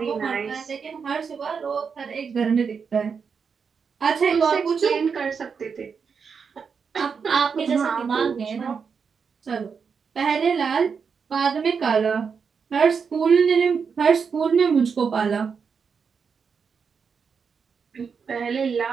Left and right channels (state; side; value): quieter; left; 6.0 dB